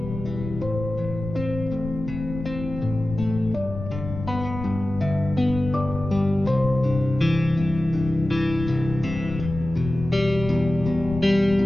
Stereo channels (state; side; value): noise; left; rumble, 9 dB below the sound